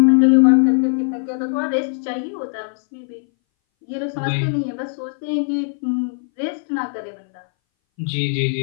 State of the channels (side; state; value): right; silent; 61 dB below the other